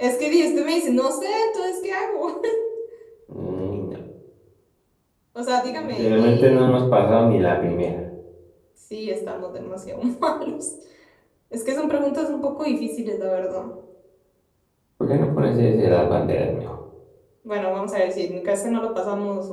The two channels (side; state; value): both; identical; correlation 1.00